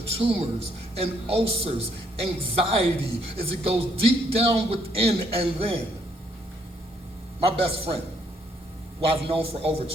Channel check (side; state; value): both; normal; correlation 0.69